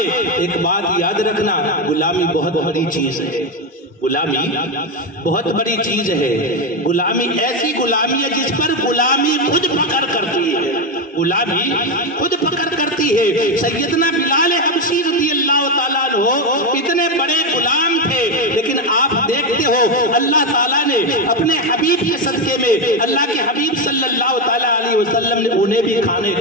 एक बात याद रखना, गुलामी बहुत बड़ी चीज है, गुलामी बहुत बड़ी चीज है। गुलामी ऐसी गुलामी है जिस पर गुलामी खुद फकर करती है, गुलामी खुद फकर करती है। सैयदना बिलाल हबशी रज़ियल्लाहु ताला अन्हु इतने बड़े गुलाम थे, लेकिन आप देखते हो अल्लाह ताला ने अपने हबीब के सदके में, अल्लाह के हबीब सल्लल्लाहु ताला अलैहि वसल्लम ने उन्हें भी खाने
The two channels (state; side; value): normal; both; correlation 0.10